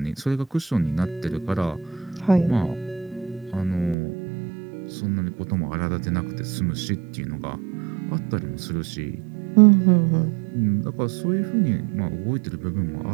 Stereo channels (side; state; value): left; drops out; at 4.0 s